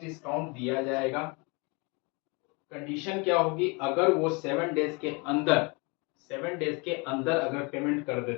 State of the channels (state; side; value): quieter; right; 30.0 dB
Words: दिया जाएगा, कंडीशन क्या होगी, अगर वो 7 डेज के अंदर अगर पेमेंट कर